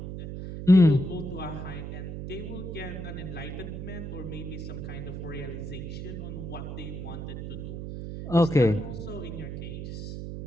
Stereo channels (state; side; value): noise; right; hum, 6 dB below the sound